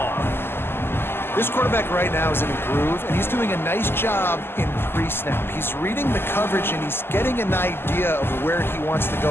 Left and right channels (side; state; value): right; late; 0.11 ms